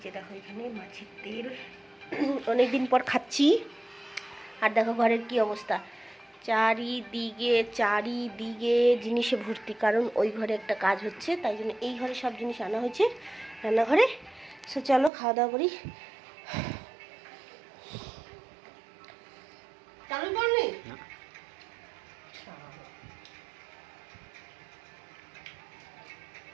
যে দেখো এখানে মাছের তেল। অনেকদিন পর খাচ্ছি। আর দেখো ঘরের কি অবস্থা, চারিদিকে জিনিসে ভর্তি, কারণ ওই ঘরে একটা কাজ হচ্ছে, তাই জন্য এই ঘরে সব জিনিস আনা হয়েছে রান্নাঘরে। সো চলো খাওয়া দাওয়া করি। চালু করনি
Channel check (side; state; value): left; drops out; at 15.1 s